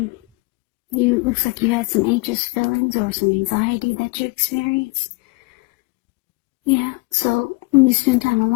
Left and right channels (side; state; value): right; quieter; 26.8 dB